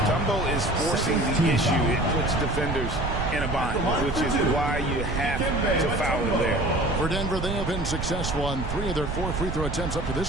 is forcing the issue, it puts defenders in a bind, which is why you have to foul him there. For Denver, they have been successful on 3 of their 4 free throw attempts up to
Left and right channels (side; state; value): right; noise; rumble, 4 dB below the sound